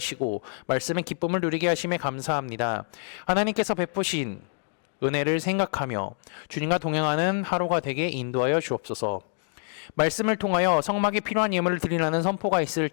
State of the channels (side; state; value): right; silent; digital silence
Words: 말씀의 기쁨을 누리게 하심에 감사합니다. 하나님께서 베푸신 은혜를 생각하며 주님과 동행하는 하루가 되게 인도하여 주옵소서. 말씀을 통하여 성막에 필요한 예물을 드리라는 선포가 있을